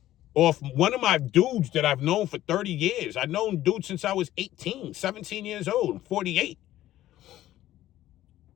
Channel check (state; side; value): quieter; right; 14.0 dB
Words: off one of my dudes that I've known for 30 years. I've known dudes since I was 18, 17 years old. I'm 48.